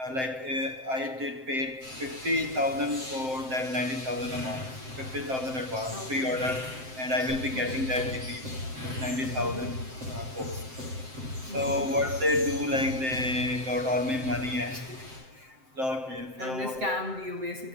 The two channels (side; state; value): left; late; 7.7 ms